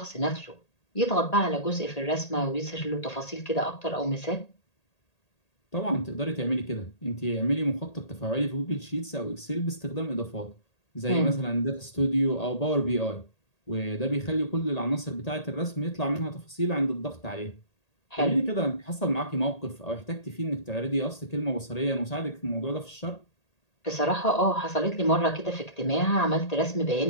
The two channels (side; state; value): right; late; 1.8 ms